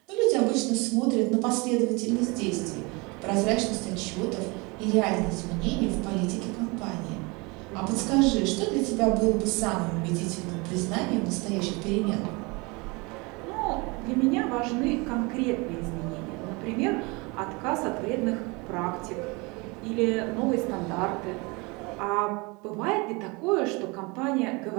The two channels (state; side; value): quieter; left; 27.1 dB